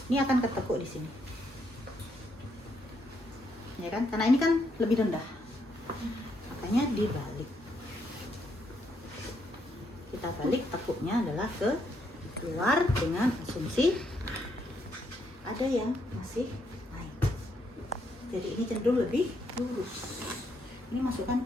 ini akan ketekuk di sini. Ya kan, karena ini kan lebih rendah, makanya dibalik. Kita balik, tekuknya adalah ke keluar dengan asumsi ada yang masih naik. Jadi ini cenderung lebih lurus. Ini masukkan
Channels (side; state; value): both; normal; correlation 0.75